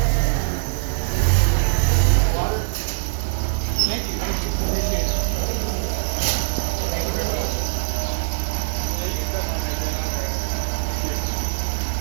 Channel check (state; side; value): silent; left; digital silence